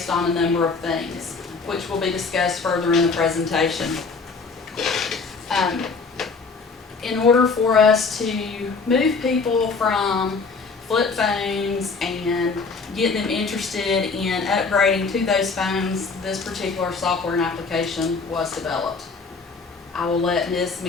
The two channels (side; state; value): right; quieter; 4.5 dB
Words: on a number of things, which will be discussed further in the presentation. In order for us to move people from flip phones and get them interested in upgrading to those phones, this particular software and application was developed. I will let Ms.